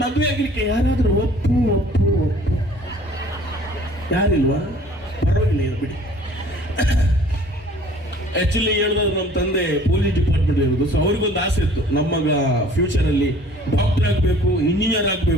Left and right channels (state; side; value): normal; both; correlation 0.52